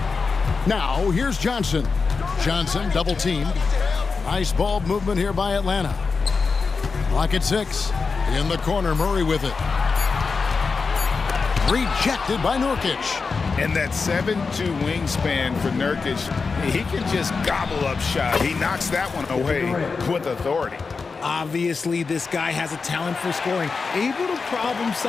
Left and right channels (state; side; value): quieter; right; 4.7 dB